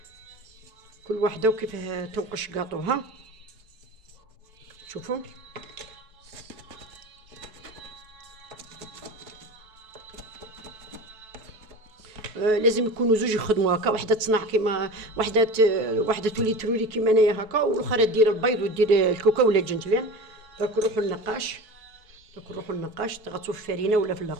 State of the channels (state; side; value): late; left; 4.6 ms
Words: كل واحده وكيف تنقش قاطوها. شوفوا لازم يكونوا زوج يخدموا هكا. وحده تصنع كيما وحده تولي ترولي كيما انايا هكا والاخرى دير البيض ودير الكوكا ولا الجنجلان. دروك نروحوا للنقاش تغطسوا في الفرينه ولا في